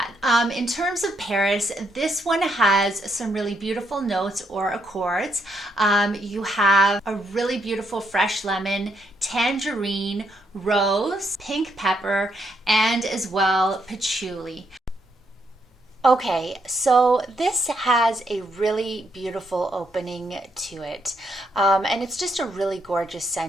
in terms of Paris, this one has some really beautiful notes or accords. You have a really beautiful fresh lemon, tangerine, rose, pink pepper, and as well patchouli. Okay, so this has a really beautiful opening to it. And it's just a really gorgeous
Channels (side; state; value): both; normal; correlation 0.76